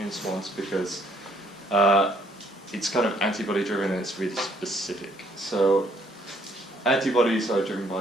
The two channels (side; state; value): both; normal; correlation 0.66